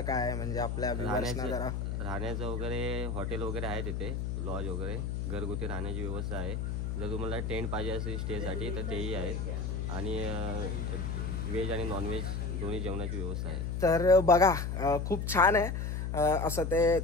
काय, म्हणजे आपल्या व्ह्यूअर्सना जरा. राहण्याचं वगैरे हॉटेल वगैरे आहे तिथे, लॉज वगैरे घरगुती राहण्याची व्यवस्था आहे. जर तुम्हाला टेंट पाहिजे असेल स्टेसाठी तर तेही आहे. आणि व्हेज आणि नॉनव्हेज दोन्ही जेवणाची व्यवस्था आहे. तर बघा खूप छान आहे असं ते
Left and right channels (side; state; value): left; noise; hum, 2 dB below the sound